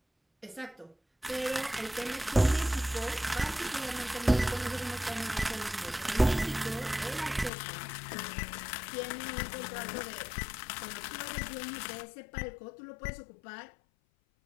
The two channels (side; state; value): right; drops out; at 7.5 s